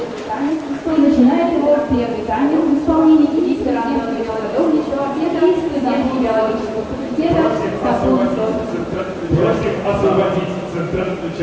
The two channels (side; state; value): both; identical; correlation 1.00